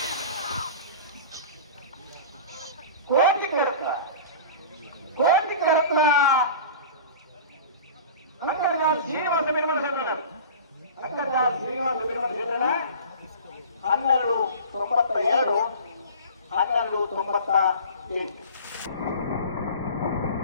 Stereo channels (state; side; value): inverted; both; correlation -0.38